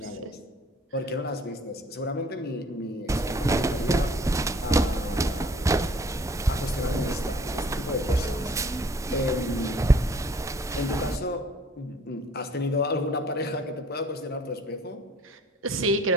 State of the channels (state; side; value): normal; both; correlation 0.55